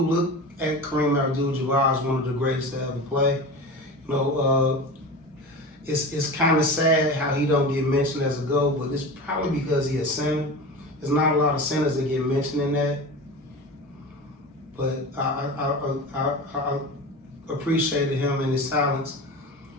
at Kareem Abdul-Jabbar as one of the greatest to ever play. You know, it's kind of sad how he don't get mentioned as a GOAT, but it's probably because he a center. There's not a lot of centers that get mentioned in that. But I appreciated him and his talents.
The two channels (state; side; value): normal; both; correlation 0.30